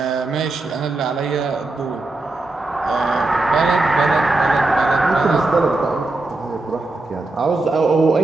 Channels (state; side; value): quieter; left; 3.0 dB